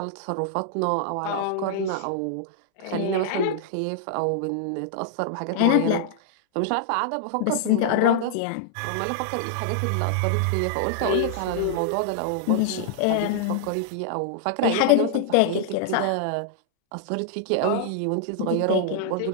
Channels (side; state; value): both; different; correlation -0.01